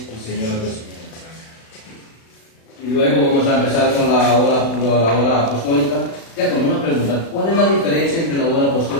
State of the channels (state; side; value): late; right; 36 ms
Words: y Señor de Señores. Y luego vamos a empezar con la hora apostólica. Ya con una pregunta, ¿cuál es la diferencia entre la hora